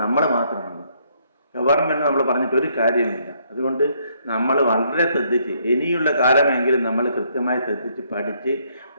നമ്മൾ മാത്രമാണ്. ഗവൺമെൻറ് നമ്മൾ പറഞ്ഞിട്ട് ഒരു കാര്യമില്ല. അതുകൊണ്ട് നമ്മൾ വളരെ ശ്രദ്ധിച്ച് ഇനിയുള്ള കാലമെങ്കിലും നമ്മൾ കൃത്യമായി ശ്രദ്ധിച്ച് പഠിച്ച്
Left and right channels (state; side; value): inverted; both; correlation -0.70